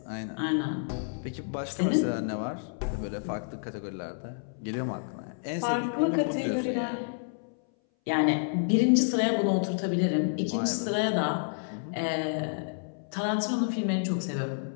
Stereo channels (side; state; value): right; silent; 58 dB below the other